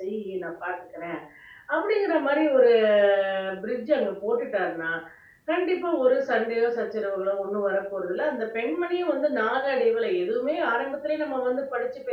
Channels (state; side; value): identical; both; correlation 1.00